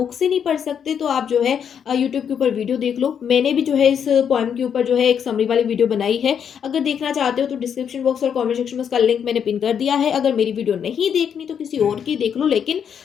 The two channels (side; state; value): right; quieter; 7.9 dB